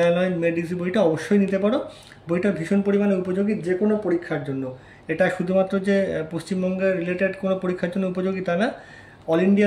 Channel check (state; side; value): identical; both; correlation 1.00